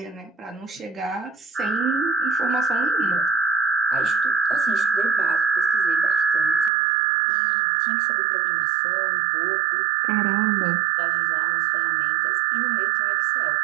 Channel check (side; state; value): left; drops out; at 6.7 s